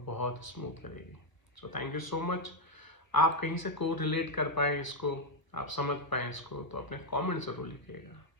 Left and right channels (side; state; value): right; late; 1.1 ms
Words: बहुत स्मूथ करेगी। So thank you so much. आप कहीं से को रिलेट कर पाएँ इसको, आप समझ पाएँ इसको, तो अपने कमेंट ज़रूर लिखिएगा।